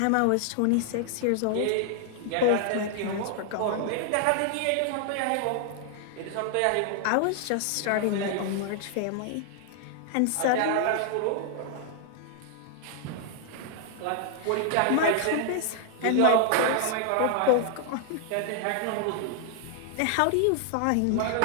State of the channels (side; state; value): both; different; correlation 0.00